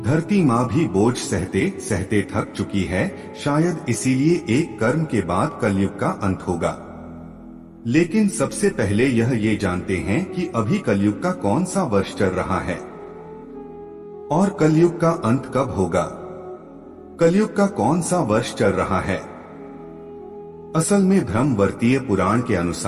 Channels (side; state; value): both; identical; correlation 1.00